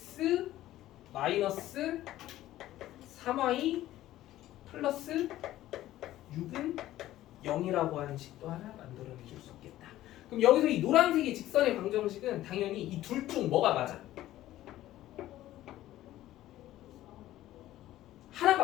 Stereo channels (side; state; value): right; quieter; 14.5 dB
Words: 마이너스 3y 플러스 6은 0이라고 하는 식도 하나 만들어내줄 수 있겠다. 그럼 여기서 이 노란색의 직선의 방정식은 당연히 이 둘 중 뭐가 맞아?